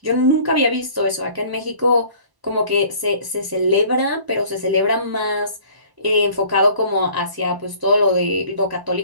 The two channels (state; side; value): late; left; 1.1 ms